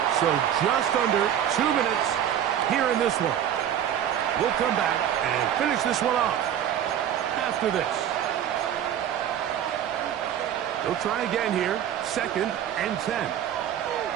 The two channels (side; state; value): left; quieter; 10.1 dB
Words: So just under 2 minutes here in this one. We'll come back and finish this one off after this. They'll try again here. 2nd and 10.